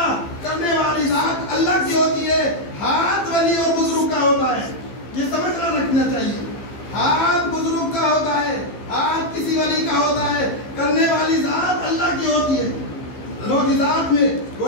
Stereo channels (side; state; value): right; late; 15 ms